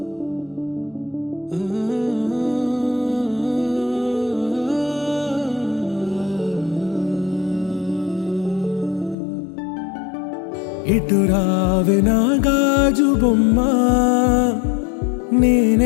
ఇటు రావే నా గాజు బొమ్మ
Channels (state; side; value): drops out; right; at 9.2 s